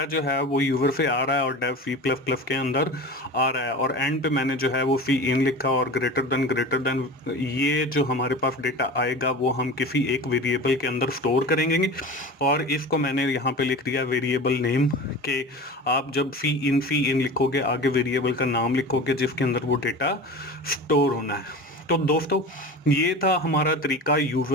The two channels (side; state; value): both; normal; correlation 0.33